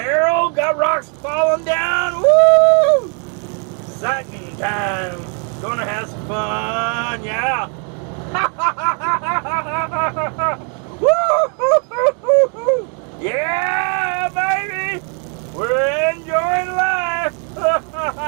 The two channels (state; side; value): quieter; left; 38.5 dB